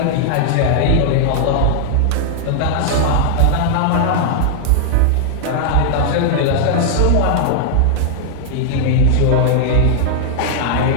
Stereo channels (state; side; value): different; both; correlation -0.01